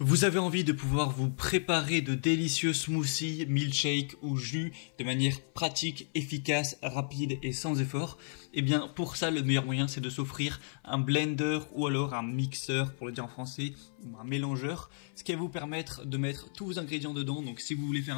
Vous avez envie de pouvoir vous préparer de délicieux smoothies, milkshakes ou jus de manière pratique, efficace, rapide et sans effort? Eh bien, pour ça, le meilleur moyen, c'est de s'offrir un blender ou alors un mixeur, pour le dire en français, ou un mélangeur, ce qui va vous permettre de mettre tous vos ingrédients dedans. Donc, si vous voulez faire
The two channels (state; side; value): silent; right; 56 dB below the other